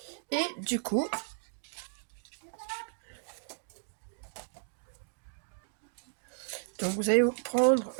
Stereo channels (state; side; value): silent; left; digital silence